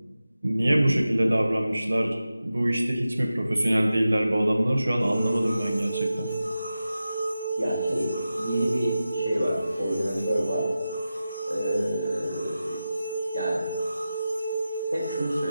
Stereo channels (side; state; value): both; inverted; correlation -0.93